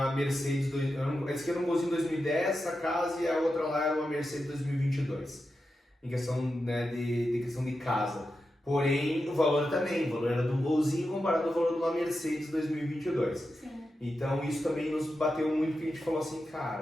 Mercedes, esse aqui era um golzinho 2010, essa casa, e a outra lá era uma Mercedes 2022, em questão de questão de casa. Porém, o valor também, o valor era de um golzinho comparado ao valor de uma Mercedes 2022. Sim. Então isso também nos bateu muito, porque a gente falou assim,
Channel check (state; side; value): normal; both; correlation 0.89